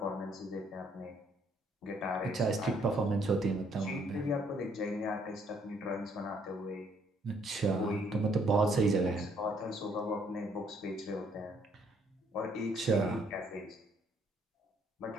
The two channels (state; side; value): normal; both; correlation 0.67